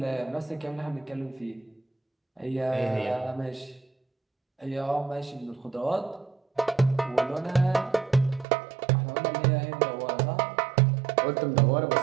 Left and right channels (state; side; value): drops out; left; at 8.5 s